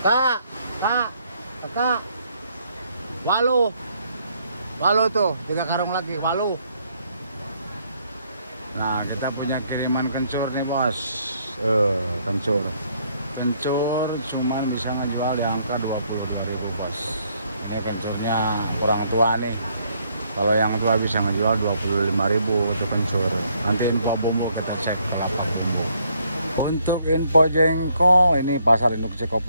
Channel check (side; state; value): both; inverted; correlation -0.70